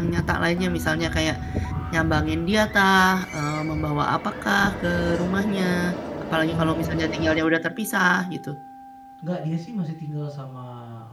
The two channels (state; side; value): identical; both; correlation 1.00